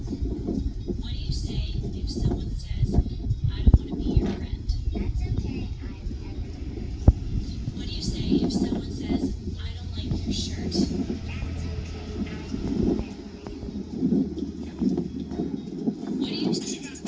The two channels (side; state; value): both; identical; correlation 1.00